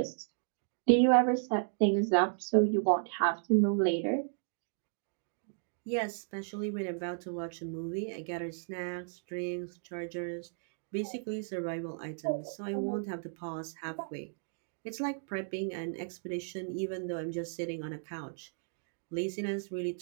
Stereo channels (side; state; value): left; silent; digital silence